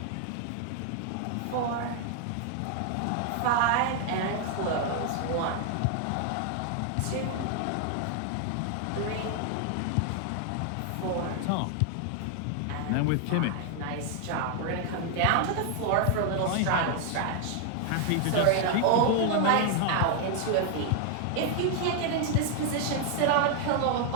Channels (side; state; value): both; different; correlation 0.00